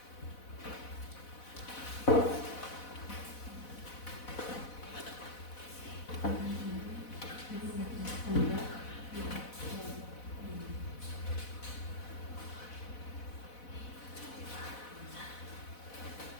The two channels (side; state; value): right; late; 4.1 ms